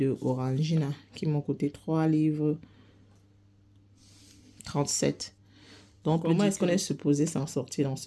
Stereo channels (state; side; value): identical; both; correlation 1.00